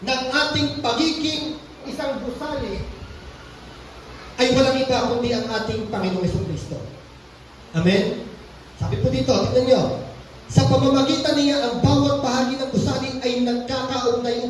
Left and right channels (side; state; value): both; identical; correlation 1.00